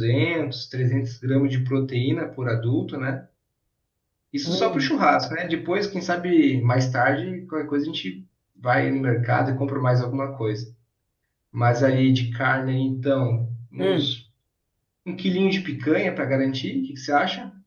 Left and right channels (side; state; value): both; identical; correlation 1.00